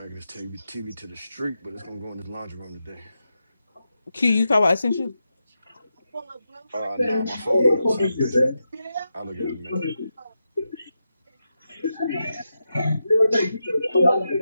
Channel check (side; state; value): both; inverted; correlation -0.88